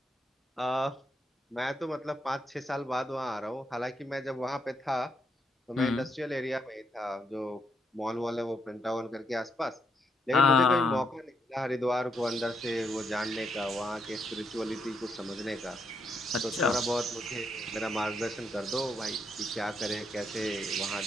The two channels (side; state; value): both; normal; correlation 0.77